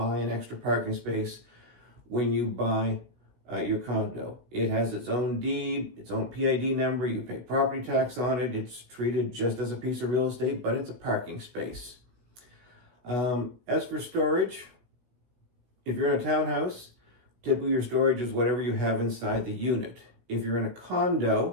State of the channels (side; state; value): left; late; 16 ms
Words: an extra parking space when you buy your condo. It has its own deed, its own PID number. You pay property tax on it. It's treated just as a piece of real estate, but it's a parking space. As for storage, if you're in a townhouse, typically your storage is whatever you have inside the unit. If you're in a